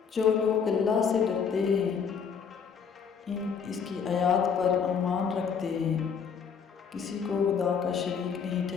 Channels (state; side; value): quieter; right; 6.5 dB